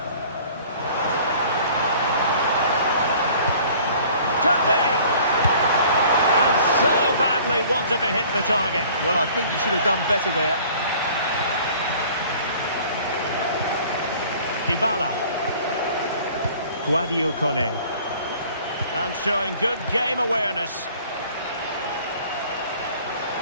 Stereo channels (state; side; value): inverted; both; correlation -0.51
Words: Could be! And so badly wanted to hit the target. Well, I think he should have done better there. Dybala. Guadio Kone. And showing good game awareness.